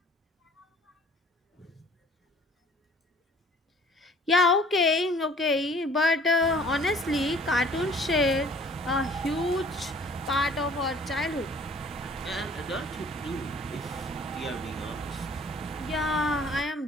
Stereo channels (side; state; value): both; normal; correlation 0.53